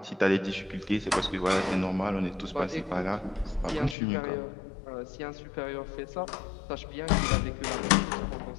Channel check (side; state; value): right; drops out; at 4.0 s